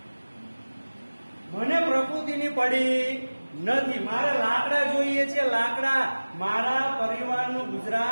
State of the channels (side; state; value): both; inverted; correlation -1.00